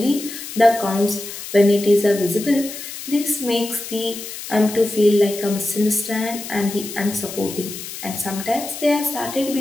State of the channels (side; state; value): left; noise; hiss, 10 dB below the sound